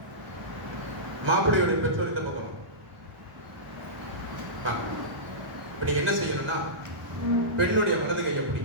மாப்பிள்ளையுடைய பெற்றோர் இந்த பக்கம் வாங்க. நீங்க என்ன செய்யணும்னா பெண்ணுடைய வலது கையை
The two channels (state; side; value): late; left; 1.0 ms